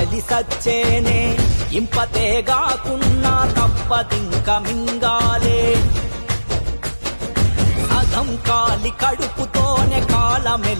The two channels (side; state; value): both; inverted; correlation -1.00